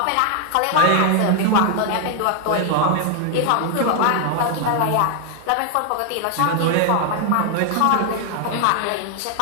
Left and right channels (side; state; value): both; different; correlation 0.00